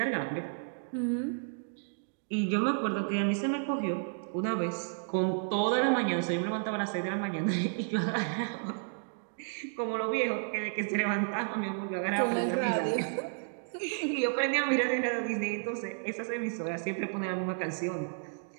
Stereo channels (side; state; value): left; silent; digital silence